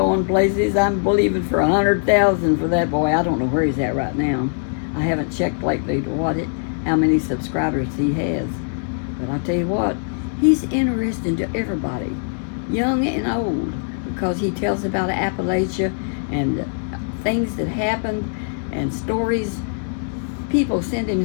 places. I'm believing for 100,000 for that boy. I don't know where he's at right now. I haven't checked lately to how many subscribers he has. But I'll tell you what, he's interesting to everybody, young and old, because he tells about Appalachia and things that happened and stories. People send him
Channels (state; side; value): silent; right; digital silence